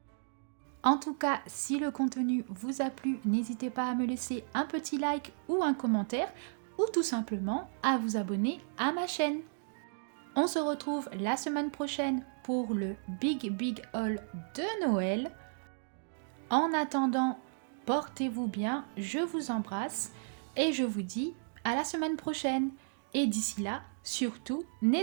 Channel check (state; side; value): silent; left; digital silence